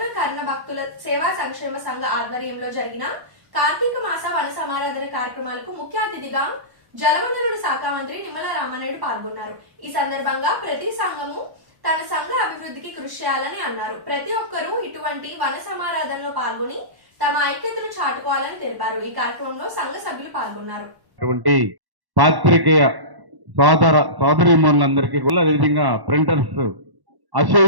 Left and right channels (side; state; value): left; late; 1.1 ms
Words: కర్ణ భక్తుల సేవా సంక్షేమ సంఘ ఆధ్వర్యంలో జరిగిన కార్తీక మాస వన సమారాధన కార్యక్రమాలకు ముఖ్య అతిథిగా జలవనరుల శాఖ మంత్రి నిమ్మల రామానాయుడు పాల్గొన్నారు. ఈ సందర్భంగా ప్రతి సంఘము తన సంఘ అభివృద్ధికి కృషి చేయాలని అన్నారు. ప్రతి ఒక్కరూ ఇటువంటి వన సమారాధనలో పాల్గొని తమ ఐక్యతను చాటుకోవాలని తెలిపారు. ఈ కార్యక్రమంలో సంఘ సభ్యులు పాల్గొన్నారు. పాత్రికేయ సోదరీమణులందరికీ కూడా, అదేవిధంగా ప్రింటర్స్